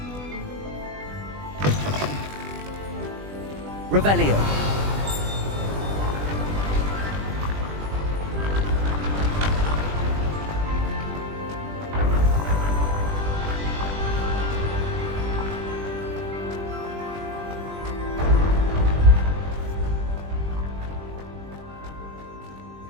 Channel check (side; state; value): left; late; 20 ms